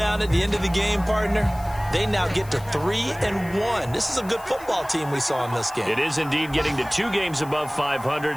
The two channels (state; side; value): noise; left; hiss, 21 dB below the sound